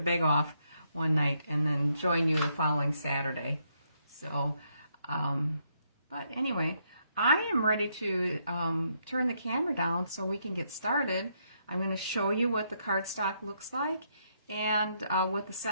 off one night and then join you the following Saturday. So, but anyway, I am ready to turn the camera down so we can get started. I'm going to show you what the cardstock looks like and what the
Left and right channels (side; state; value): both; inverted; correlation -0.76